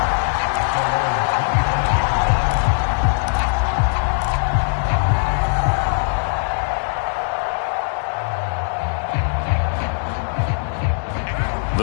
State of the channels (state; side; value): silent; right; digital silence